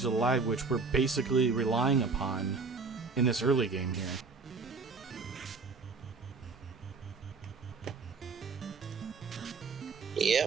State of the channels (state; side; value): quieter; left; 4.6 dB